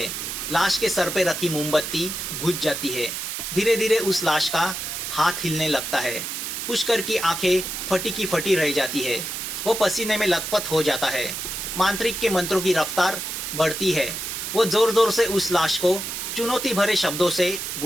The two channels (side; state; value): right; noise; hiss, 5 dB below the sound